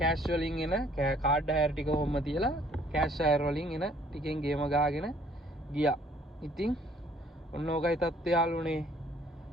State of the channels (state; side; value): normal; both; correlation 0.60